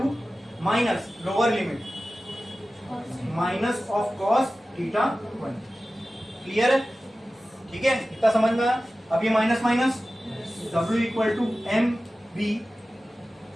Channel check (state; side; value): normal; both; correlation 0.95